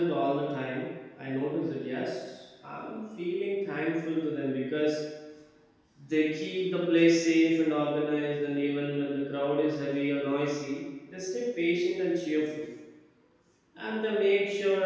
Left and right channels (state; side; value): identical; both; correlation 1.00